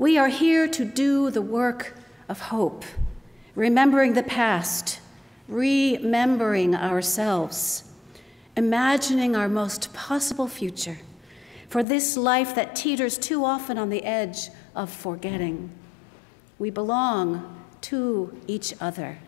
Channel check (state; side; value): drops out; right; at 11.9 s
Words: are here to do the work of hope, remembering the past, remembering ourselves, imagining our most possible future for this life that teeters too often on the edge of forgetting. We belong to each other.